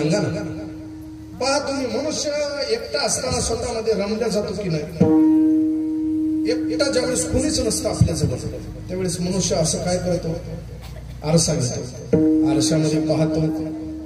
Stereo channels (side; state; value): both; identical; correlation 1.00